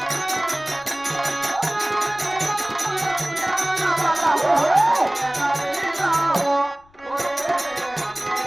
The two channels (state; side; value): noise; left; rumble, 29 dB below the sound